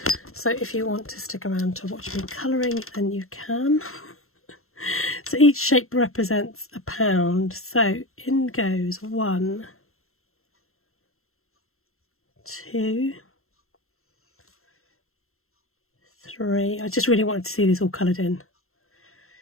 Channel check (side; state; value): right; late; 0.62 ms